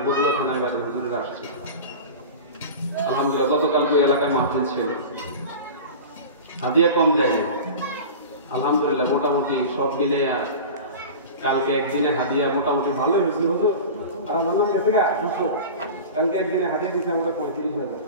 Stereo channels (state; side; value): inverted; both; correlation -0.32